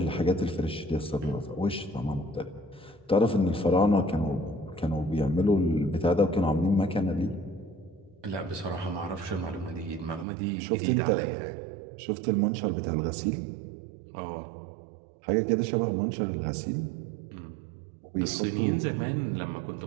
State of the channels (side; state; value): left; drops out; at 10.2 s